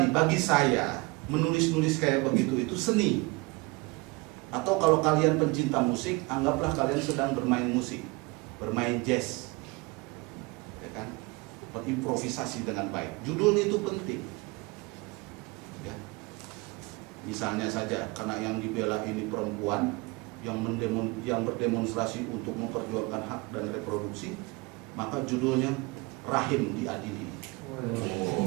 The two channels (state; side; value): quieter; left; 25.8 dB